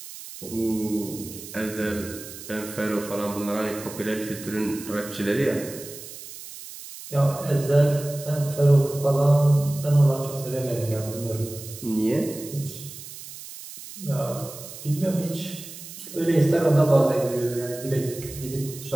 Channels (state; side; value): noise; right; hiss, 13 dB below the sound